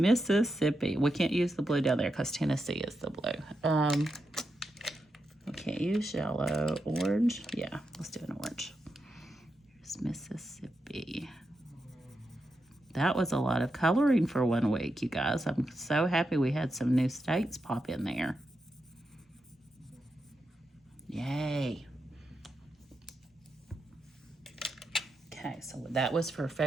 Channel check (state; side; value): normal; both; correlation 0.86